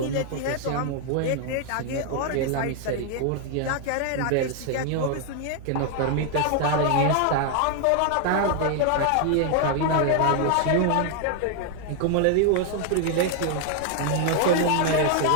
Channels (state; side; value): different; both; correlation 0.00